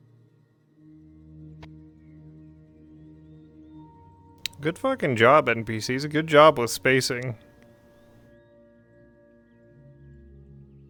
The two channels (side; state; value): both; identical; correlation 1.00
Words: Good fucking job, NPCs. A good job with spacing.